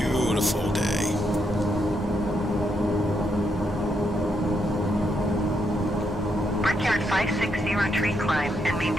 day. Brickyard 560 tree climb and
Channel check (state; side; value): normal; both; correlation 0.79